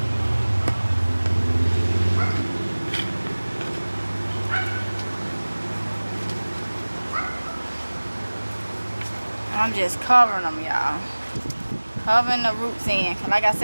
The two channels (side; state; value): both; inverted; correlation -1.00